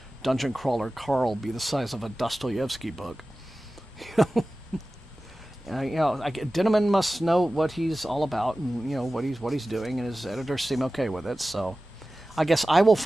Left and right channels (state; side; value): normal; both; correlation 0.96